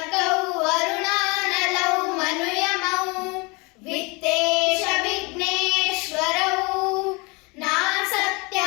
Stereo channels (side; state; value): right; quieter; 27.8 dB